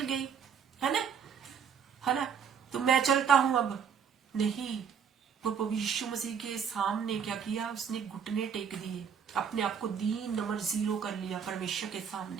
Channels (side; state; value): left; quieter; 7.2 dB